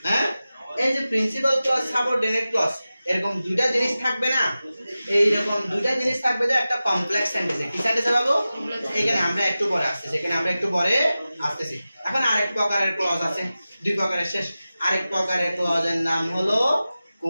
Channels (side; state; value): both; inverted; correlation -0.95